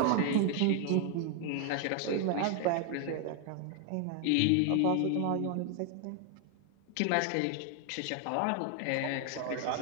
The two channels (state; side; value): different; both; correlation 0.00